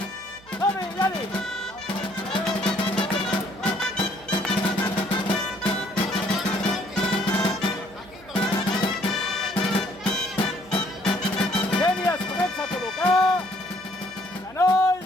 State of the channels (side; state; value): right; noise; hum, 24 dB below the sound